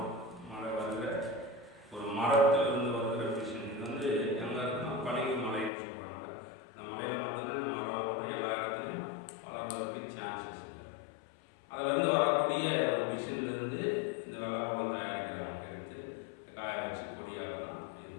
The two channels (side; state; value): right; drops out; at 5.7 s